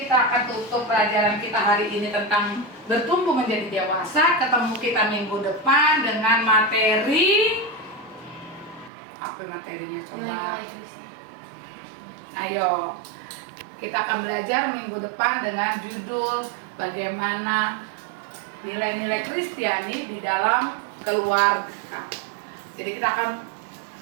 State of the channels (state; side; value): drops out; left; at 8.9 s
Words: akan tutup pelajaran kita hari ini tentang bertumbuh menjadi dewasa. Ketemu kita minggu depan dengan materi apa materinya coba? Ayo, kita akan belajar minggu depan dengan judul bagaimana nilai-nilai Kristiani di dalam keluarga. Jadi kita akan